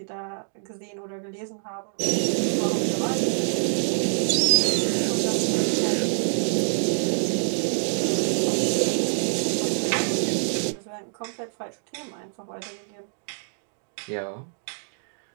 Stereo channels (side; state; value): left; silent; digital silence